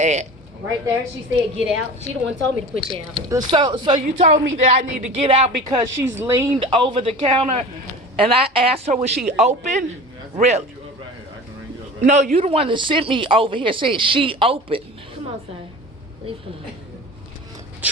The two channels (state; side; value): normal; both; correlation 0.36